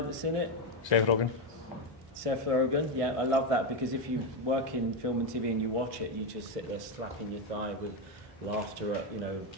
in it? Seth Rogen. Seth Rogen. Yeah, I love that because if you work in film and TV and you watch it, you just sit there slapping your thigh with laughter at, you know,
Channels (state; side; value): normal; both; correlation 0.07